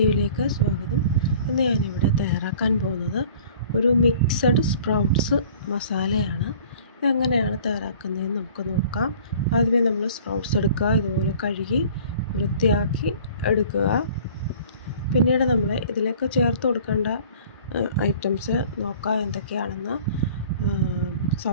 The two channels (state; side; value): inverted; both; correlation -0.49